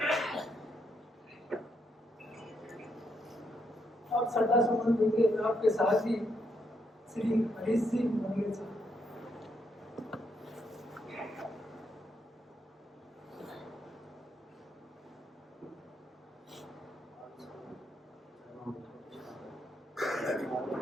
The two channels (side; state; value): both; normal; correlation 0.77